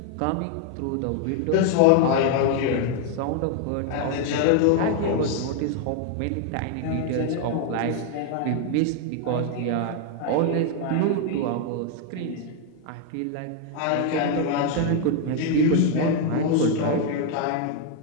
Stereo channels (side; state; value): both; different; correlation 0.00